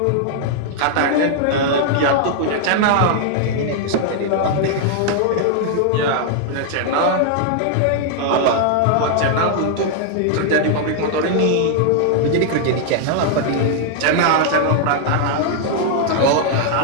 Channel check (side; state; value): both; different; correlation 0.00